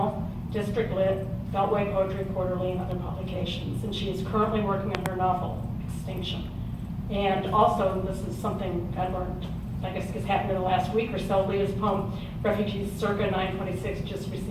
District Lit, Beltway Poetry Quarterly, and other publications. And she is currently working on her novel, Extinction. And also, this is something I learned, I guess it's happened in the last week or so, Leah's poem, Refugees Circa 926, just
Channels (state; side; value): identical; both; correlation 1.00